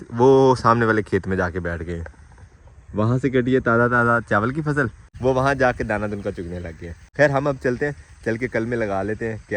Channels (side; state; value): both; identical; correlation 1.00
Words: वो सामने वाले खेत में जाके बैठ गए। वहाँ से कटी है ताज़ा चावल की फसल, वो वहाँ जाके दाना दुनका चुगने लग गया। खैर हम अब चलते हैं, चल के कल में लगा लेते हैं।